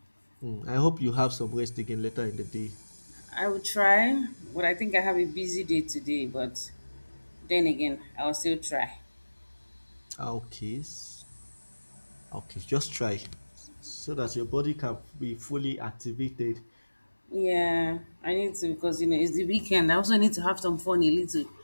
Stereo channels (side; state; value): both; inverted; correlation -1.00